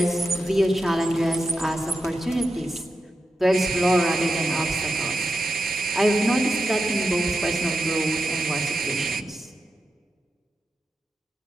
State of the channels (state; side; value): normal; both; correlation 0.89